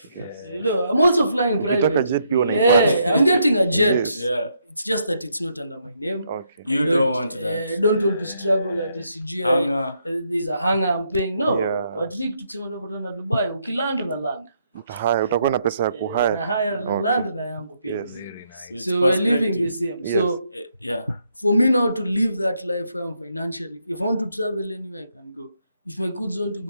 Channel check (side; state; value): both; inverted; correlation -0.75